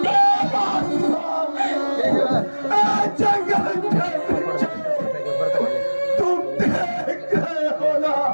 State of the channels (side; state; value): both; inverted; correlation -1.00